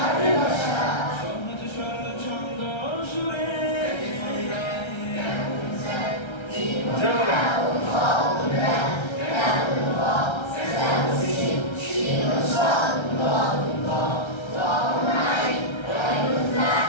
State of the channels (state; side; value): late; right; 1.3 ms